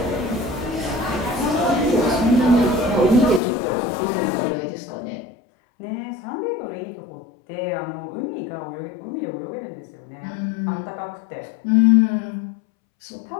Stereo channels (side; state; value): right; drops out; at 3.4 s